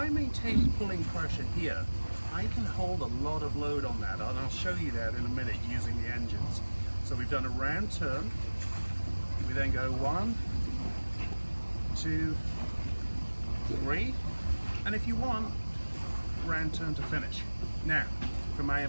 maintain pulling pressure here, I can hold a lot of load on that, and I'll show you that in a minute using the engines. So we've done a round turn, we then go 1, 2, 3, and if you want, round turn to finish. Now, for my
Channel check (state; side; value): inverted; both; correlation -1.00